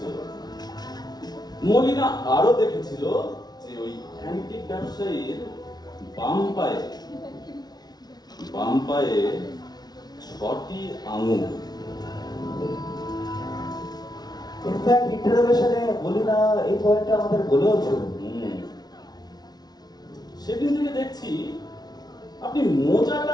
মলিনা আরো দেখেছিল যে ওই অ্যান্টিক ব্যবসায়ীর বাম পায়ে 6টি আঙুল। ইনফ্যাক্ট ইন্টারোগেশনে বলি না, এই পয়েন্টটা আমাদের বলেও ছিল। সেদিন থেকে দেখছি আপনি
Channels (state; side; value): late; right; 0.19 ms